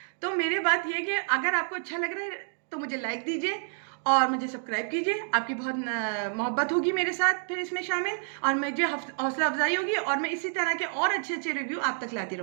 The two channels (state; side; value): silent; left; 59 dB below the other